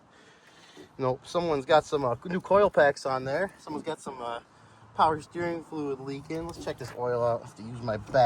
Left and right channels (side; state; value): both; identical; correlation 1.00